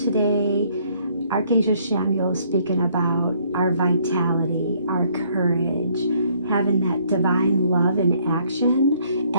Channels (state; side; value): inverted; both; correlation -0.65